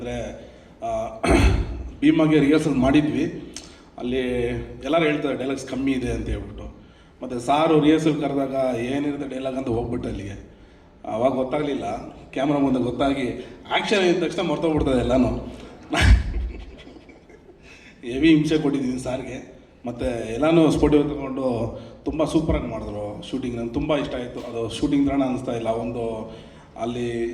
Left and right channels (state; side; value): identical; both; correlation 1.00